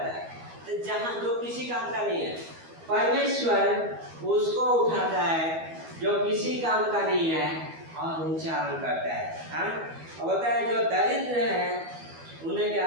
है, तो जहाँ जो किसी काम का नहीं है, परमेश्वर उसको उठाता है जो किसी काम का नहीं है और ऊंचा करता है। हाँ, और बोलता है जो दरिद्र है उन्हें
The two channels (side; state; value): left; late; 12 ms